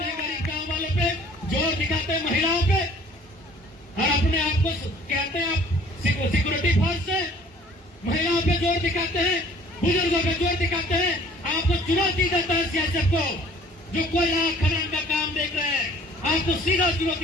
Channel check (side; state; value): both; normal; correlation 0.53